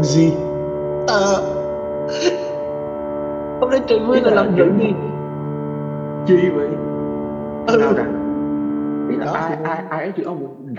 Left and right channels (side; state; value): both; identical; correlation 1.00